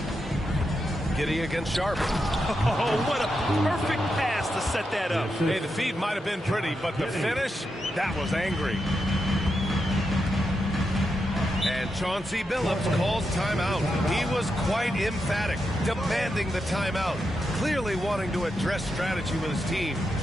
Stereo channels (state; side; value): normal; both; correlation 0.86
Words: Giddy against Sharp. Oh, what a perfect pass to set that up. Hey, the feed might have been pretty, but the finish, that was angry. And Chauncey Billups calls timeout. He was quite emphatic, demanding the timeout, clearly wanting to address strategy with his team.